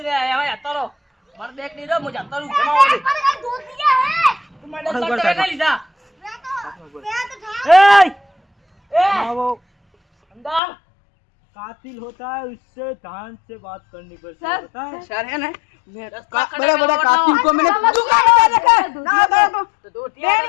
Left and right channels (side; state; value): right; drops out; at 10.6 s